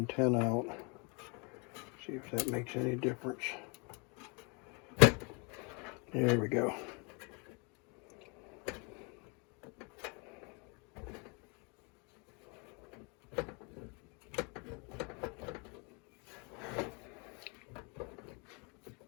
out. See if that makes any difference. There we go.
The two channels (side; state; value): right; quieter; 32.5 dB